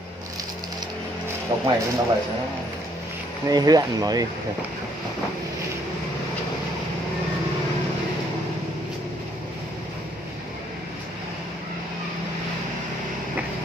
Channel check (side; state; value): both; normal; correlation 0.67